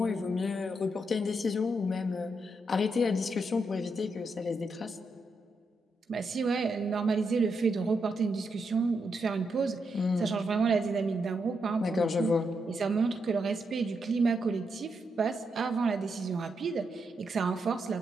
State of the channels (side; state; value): both; normal; correlation 0.82